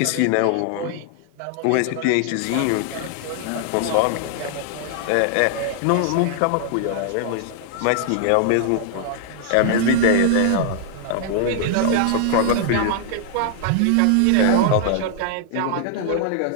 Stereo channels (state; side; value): different; both; correlation 0.00